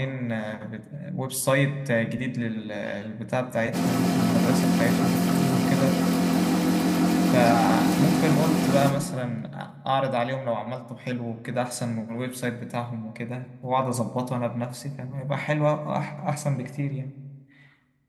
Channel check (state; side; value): identical; both; correlation 1.00